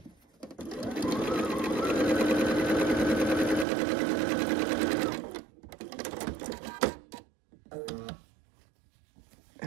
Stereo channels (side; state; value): left; drops out; at 3.7 s